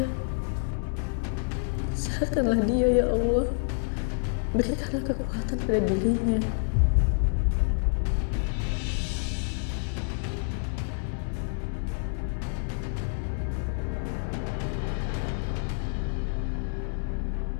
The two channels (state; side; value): silent; right; 59 dB below the other